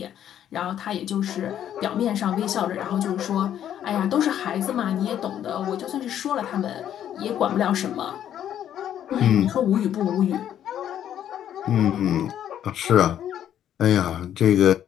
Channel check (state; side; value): quieter; right; 10.4 dB